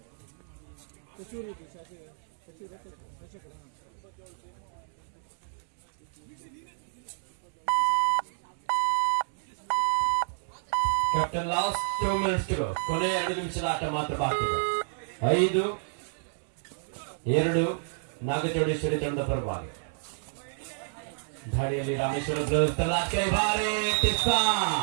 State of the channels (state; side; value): silent; left; digital silence